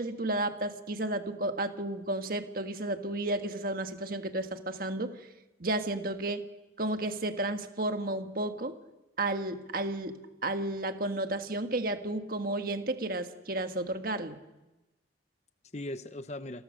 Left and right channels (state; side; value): normal; both; correlation 0.06